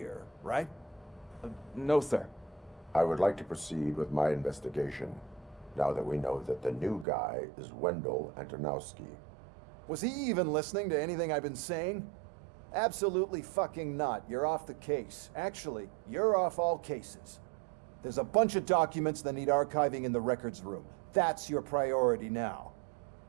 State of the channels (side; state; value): left; drops out; at 7.1 s